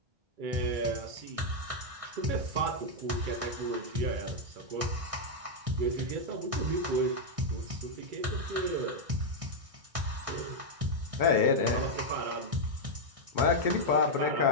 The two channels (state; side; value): late; left; 1.6 ms